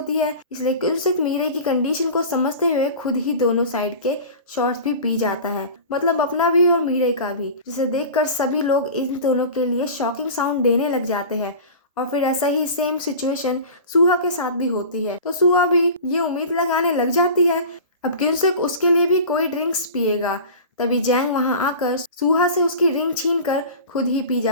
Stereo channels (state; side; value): inverted; both; correlation -0.35